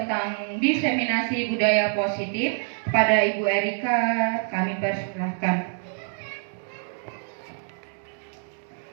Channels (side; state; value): left; silent; 61 dB below the other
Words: diseminasi budaya positif. Kepada Ibu Erika kami persilahkan.